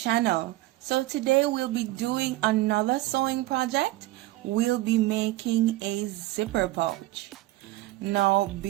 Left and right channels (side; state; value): left; quieter; 17.5 dB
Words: So today we'll be doing another sewing project. We'll be making a zipper pouch. Now